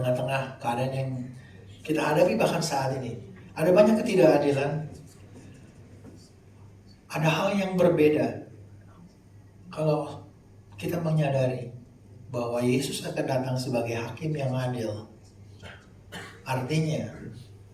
keadaan yang kita hadapi bahkan saat ini, ada banyak ketidakadilan, ada hal yang berbeda kalau kita menyadari bahwa Yesus akan datang sebagai hakim yang adil. Artinya,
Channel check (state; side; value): identical; both; correlation 1.00